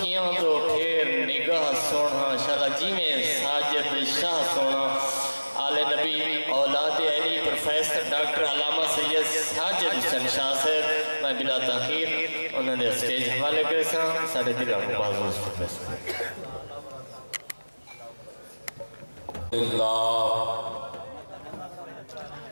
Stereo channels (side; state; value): both; inverted; correlation -1.00